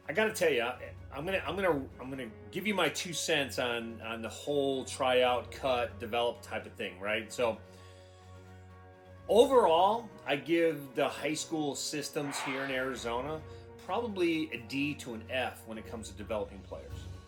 I got to tell you, I'm gonna give you my 2 cents on the whole tryout, cut, develop type of thing, right? So overall, I give the high school systems here in Arizona probably a D to an F when it comes to developing players.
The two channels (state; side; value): identical; both; correlation 1.00